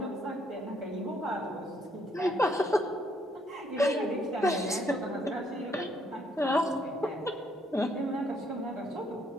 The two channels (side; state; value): both; normal; correlation 0.70